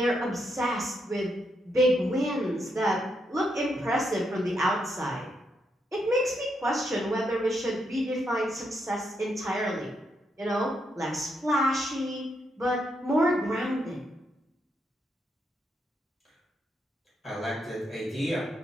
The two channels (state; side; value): normal; both; correlation 0.80